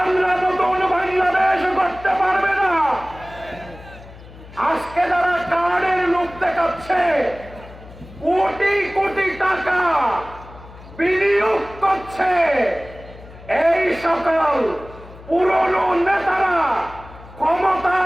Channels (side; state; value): left; noise; hum, 19 dB below the sound